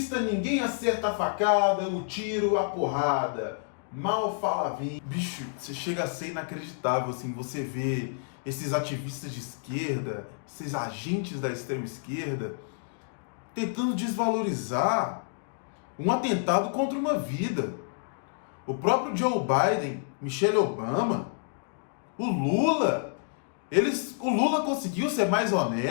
ninguém acerta a facada, o tiro, a porrada. Mal fala bem. Bicho, você chega a ser inacreditável, assim, você vê esses ativistas de esquerda, esses agentes da extrema esquerda, tentando desvalorizar um atentado contra uma vida. O próprio Joe Biden, Michelle Obama, o Lula, o Lula conseguiu ser mais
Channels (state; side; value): silent; right; digital silence